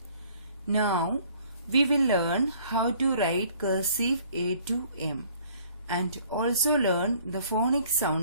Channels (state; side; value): inverted; both; correlation -0.57